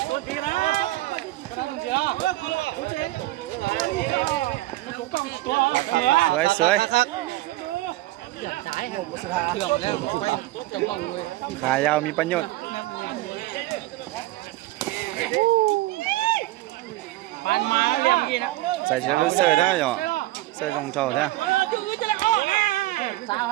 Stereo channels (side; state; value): left; quieter; 17.4 dB